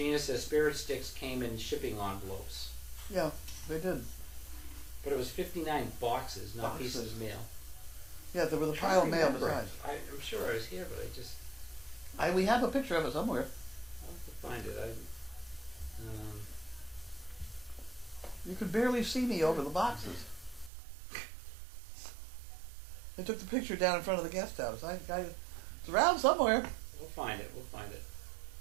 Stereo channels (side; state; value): left; drops out; at 20.7 s